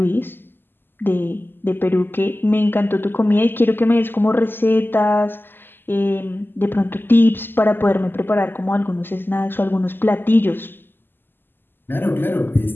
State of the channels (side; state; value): right; late; 0.096 ms